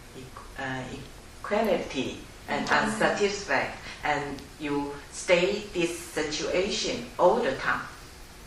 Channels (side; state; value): both; identical; correlation 1.00